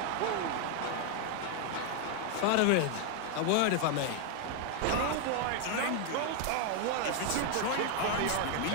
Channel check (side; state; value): both; different; correlation 0.00